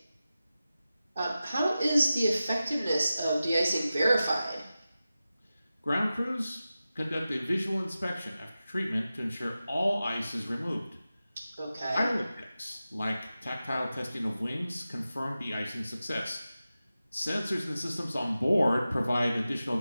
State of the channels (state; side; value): inverted; both; correlation -0.94